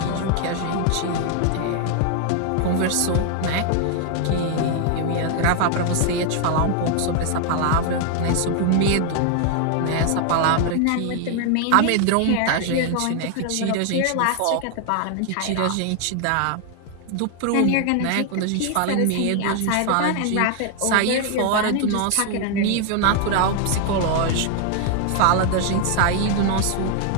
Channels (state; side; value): different; both; correlation 0.00